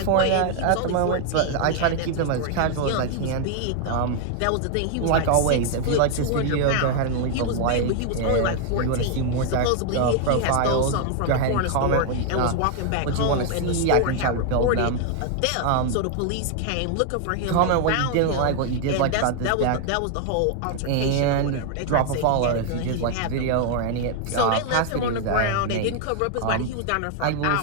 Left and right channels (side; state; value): both; different; correlation 0.00